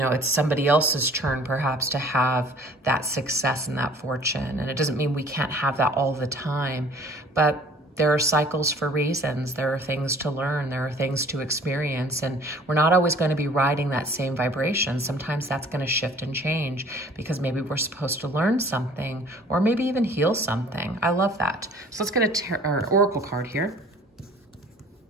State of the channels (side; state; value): both; normal; correlation 0.51